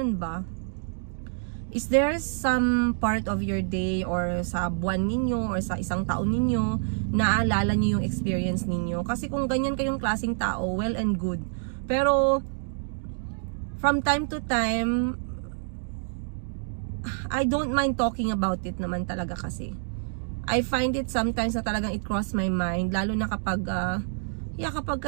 ba? Is there some part of your day or sa buwan ninyo or sa isang taon ninyo naalala nyo yung experience ninyo? Kasi kung ganyan kayong klaseng tao, well and good. Pero from time to time, I don't mind talking about it naman talaga kasi. I find it sometimes na talagang it cross my mind, lalo na kapag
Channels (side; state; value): left; silent; digital silence